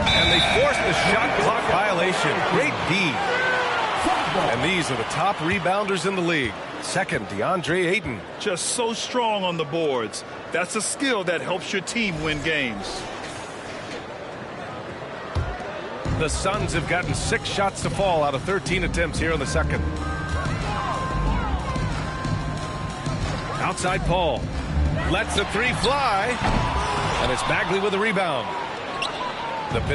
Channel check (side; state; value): both; identical; correlation 1.00